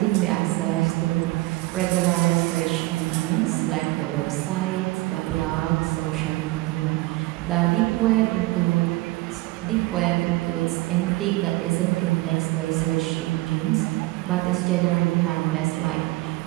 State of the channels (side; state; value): left; quieter; 20.3 dB